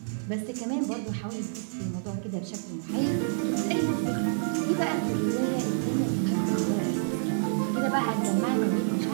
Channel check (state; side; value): silent; left; digital silence